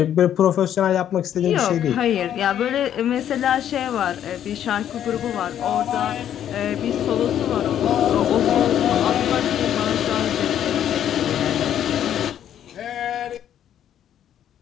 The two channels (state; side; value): quieter; right; 10.3 dB